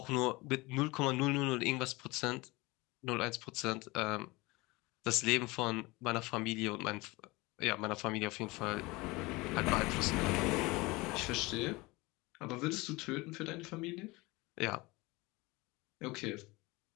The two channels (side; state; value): right; quieter; 23.0 dB